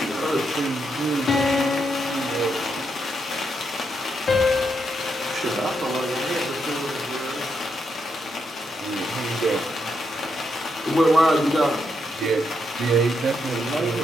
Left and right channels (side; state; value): both; normal; correlation 0.80